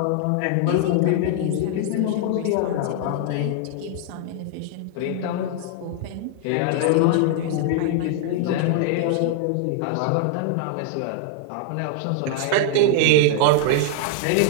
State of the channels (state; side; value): different; both; correlation 0.00